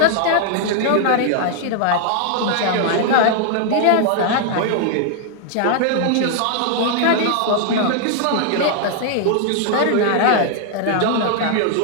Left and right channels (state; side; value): different; both; correlation 0.00